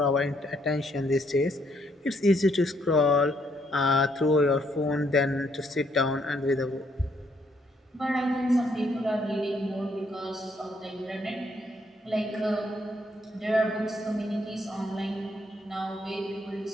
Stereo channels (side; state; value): both; normal; correlation 0.71